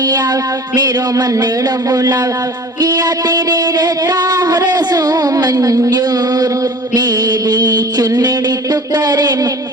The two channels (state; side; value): normal; both; correlation 0.42